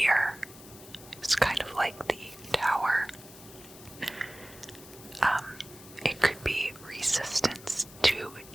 is kind of like the tower. It could be resistance to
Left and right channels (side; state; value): left; noise; hiss, 19 dB below the sound